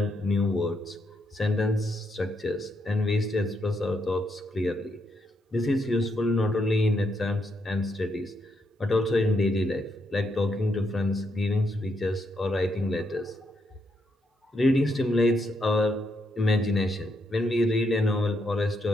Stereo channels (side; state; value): both; normal; correlation 0.78